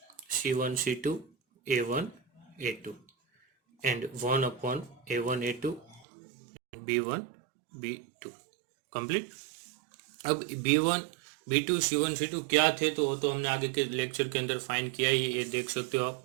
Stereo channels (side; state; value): left; drops out; at 6.1 s